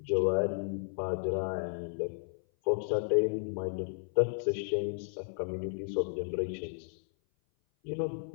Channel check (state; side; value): silent; right; 56 dB below the other